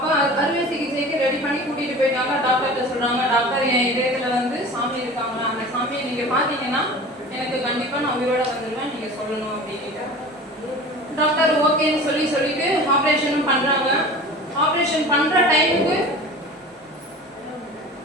அறுவை சிகிச்சைக்கு ரெடி பண்ணி கூட்டிகிட்டு போயிட்டாங்க. டாக்டர்கிட்ட சொல்கிறாங்க, டாக்டர் என் இதயத்தில் வந்து சாமி இருக்காங்களா, அந்த சாமியை நீங்கள் பார்த்தீங்கன்னா எனக்கு கண்டிப்பாக நான் உயிரோட வந்துடுவேன், நீங்கள் சொல்லணும் அப்படின்ட்டு. டாக்டர் ஓகேன்னு சொல்லிட்டு ஆப்ரேஷனும் பண்ணுறாங்க. ஆப்ரேஷன் பண்ணுற டைமுக்கு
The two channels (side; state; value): both; normal; correlation 0.38